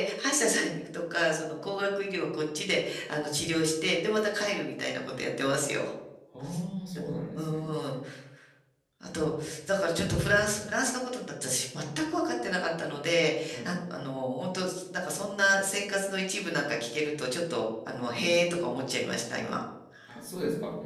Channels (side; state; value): both; identical; correlation 1.00